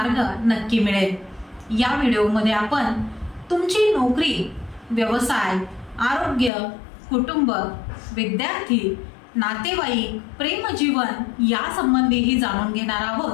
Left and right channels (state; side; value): drops out; right; at 6.5 s